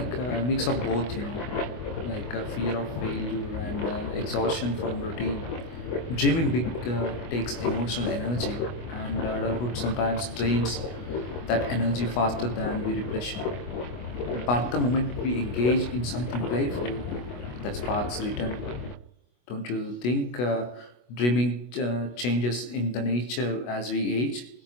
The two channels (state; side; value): late; right; 25 ms